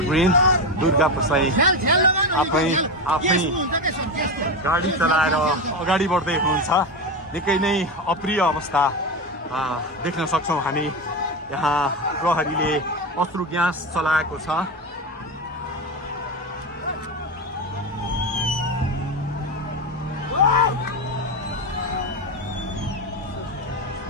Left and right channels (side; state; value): both; normal; correlation 0.17